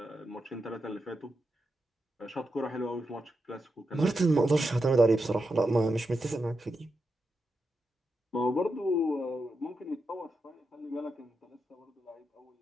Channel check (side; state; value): both; normal; correlation 0.87